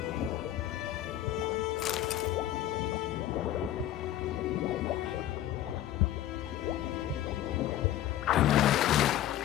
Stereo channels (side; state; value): right; quieter; 12.7 dB